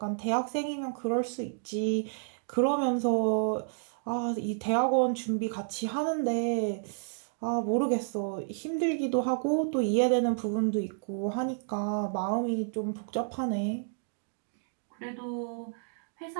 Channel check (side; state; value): left; silent; digital silence